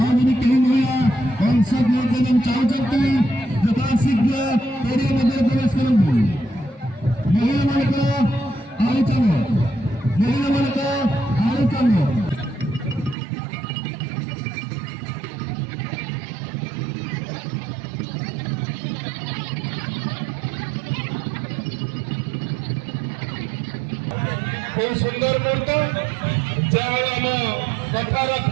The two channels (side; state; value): left; drops out; at 13.2 s